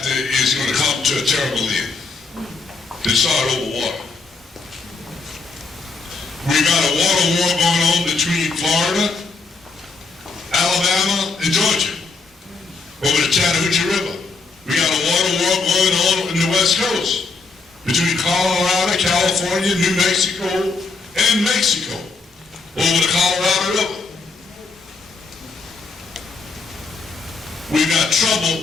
is going to come to a terrible end. It started over water. We got a water war going on between Florida, Alabama, and Georgia over the Chattahoochee River. We got a water war going on in the West Coast between Colorado, California, New Mexico, and Mexico over the Colorado River. We got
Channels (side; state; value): right; quieter; 4.1 dB